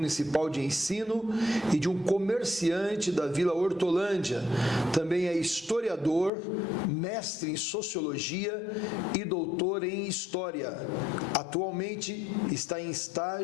de ensino e de um comerciante da Vila Hortolândia. Também é historiador, mestre em sociologia e doutor em história. Atualmente está em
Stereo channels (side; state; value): right; drops out; at 6.3 s